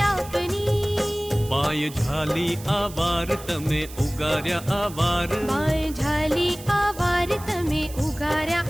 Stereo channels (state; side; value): noise; right; hiss, 16 dB below the sound